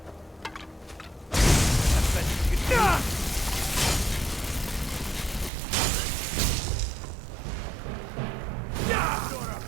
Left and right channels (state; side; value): drops out; left; at 5.5 s